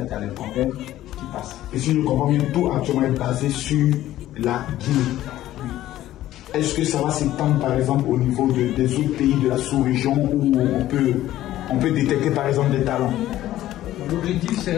à les convaincre, tu passes. Et si je comprends bien, tout actuellement est basé sur la Guinée. Est-ce que ça va s'étendre par exemple au niveau des autres pays de la sous-région où on peut détecter par exemple des talents? L'objectif, c'est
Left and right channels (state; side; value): quieter; right; 14.0 dB